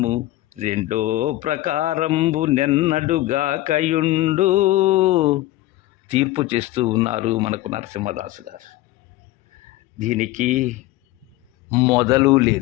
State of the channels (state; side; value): quieter; right; 16.8 dB